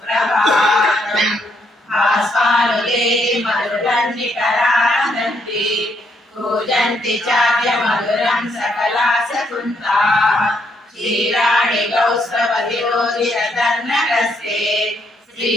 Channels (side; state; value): both; normal; correlation 0.74